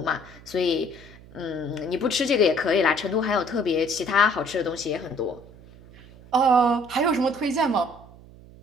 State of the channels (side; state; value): right; noise; hum, 21 dB below the sound